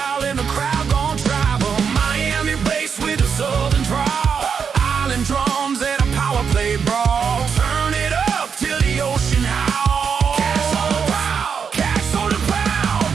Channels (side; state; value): left; quieter; 6.5 dB